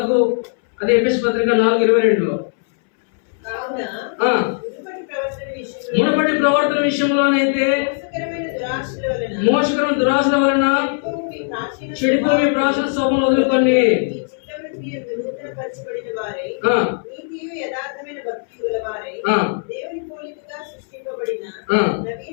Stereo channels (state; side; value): silent; right; 66 dB below the other